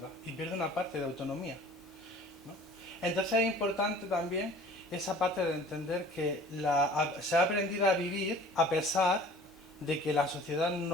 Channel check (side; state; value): both; normal; correlation 0.48